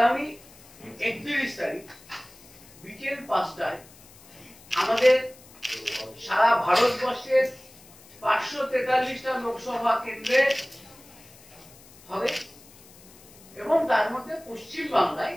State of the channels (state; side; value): noise; left; hiss, 23 dB below the sound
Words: 31 তারিখ বিকেল 5টায় আমাদের সারা ভারতবর্ষের 543টা লোকসভা কেন্দ্রে হবে এবং তার মধ্যে পশ্চিম